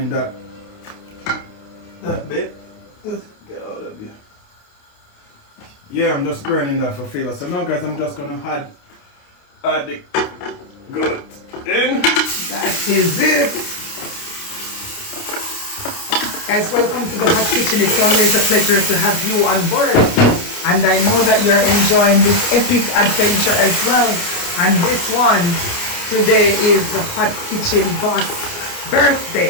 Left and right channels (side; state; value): right; late; 29 ms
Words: that bit. Let's get all of you. Yeah, I'm just burning that for flavor. So now, guys, I'm just gonna add the goat in. That is it. Guys, welcome to the hot kitchen. It's always a pleasure to have you on board. And I know that you're enjoying this epic adventure as well. And this one today is the hot kitchen boss